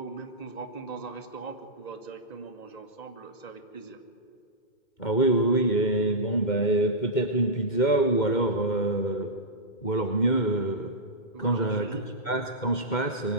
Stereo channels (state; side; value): late; right; 2.1 ms